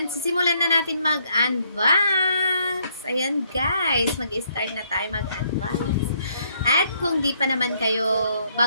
sisimulan na natin mag-unbox. Ayan guys, mag-start na tayo mag-unbox. At kung di pa naman kayo,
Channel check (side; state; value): both; inverted; correlation -0.70